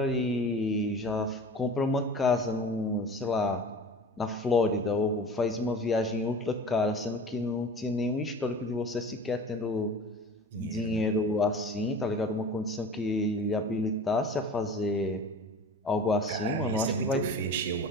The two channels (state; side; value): normal; both; correlation 0.38